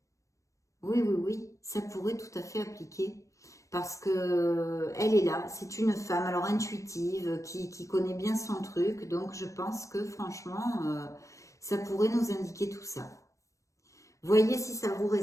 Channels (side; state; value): right; late; 0.15 ms